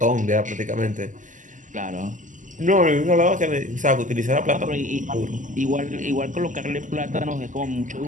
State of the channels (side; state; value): left; late; 0.37 ms